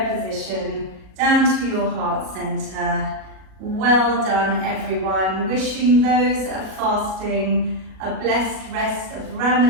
position, down to your heart center. Well done, everyone. Wishing those that are fasting a blessed rest of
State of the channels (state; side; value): late; left; 37 ms